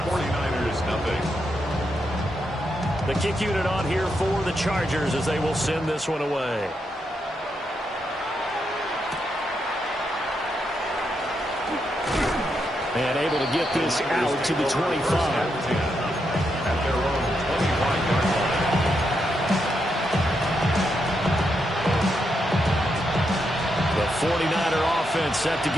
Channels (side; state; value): both; normal; correlation 0.82